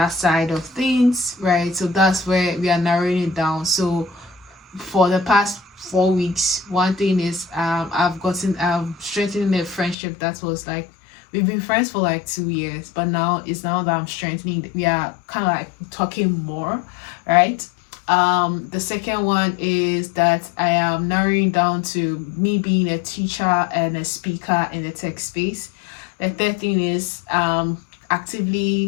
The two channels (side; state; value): right; drops out; at 10.0 s